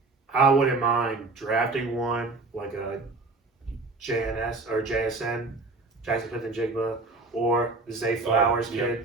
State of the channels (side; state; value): left; quieter; 3.5 dB